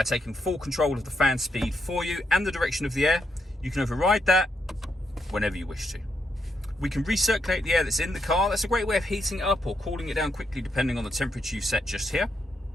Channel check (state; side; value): normal; both; correlation 0.80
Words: taking full control of the fan speed for you and the direction of the air. You can override that whenever you wish to. We can recirculate the air that's in the car. That's a great way of heating it up or cooling it down quickly depending on the temperature you set just here.